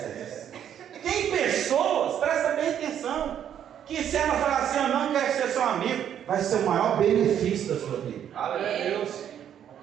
Tem pessoas, presta bem atenção, que se ela falar assim, eu não quero ser seu amigo, vai ser o maior benefício da sua vida. Aleluia.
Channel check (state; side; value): quieter; left; 9.6 dB